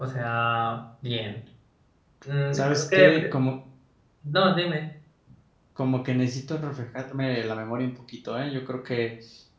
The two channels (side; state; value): both; identical; correlation 1.00